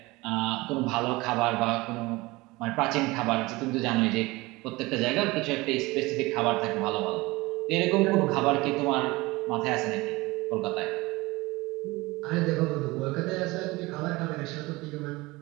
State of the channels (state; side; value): quieter; left; 21.7 dB